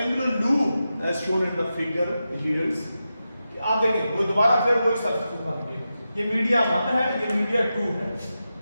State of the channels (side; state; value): both; inverted; correlation -0.90